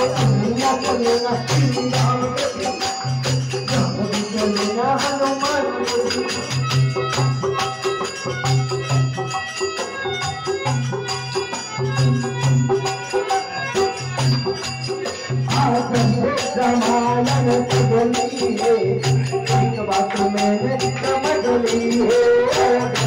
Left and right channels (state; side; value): identical; both; correlation 1.00